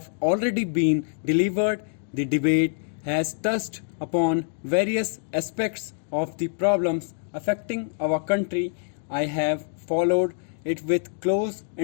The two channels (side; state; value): right; silent; digital silence